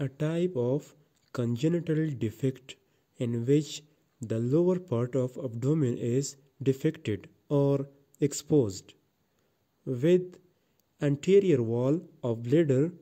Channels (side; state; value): both; identical; correlation 1.00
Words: type of congenital defect in which the lower part of abdomen is defected or exposed, with anterior wall of bladder